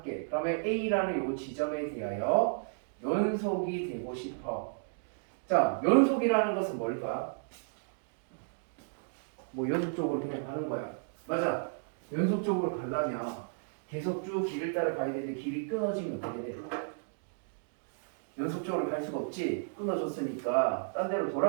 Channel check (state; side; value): silent; left; digital silence